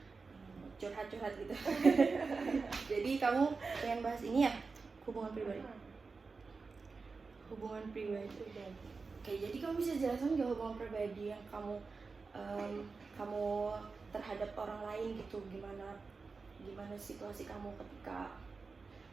curhat-curhat gitu. Jadi kamu pengen bahas ini ya, hubungan pribadi. Hubungan pribadi. Oke, jadi kamu bisa jelaskan nggak hubungan pribadi yang kamu terhadap orang lain gitu, gimana situasi kamu ketika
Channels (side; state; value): left; quieter; 4.4 dB